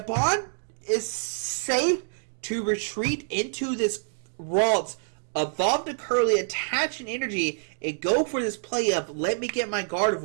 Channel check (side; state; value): left; silent; digital silence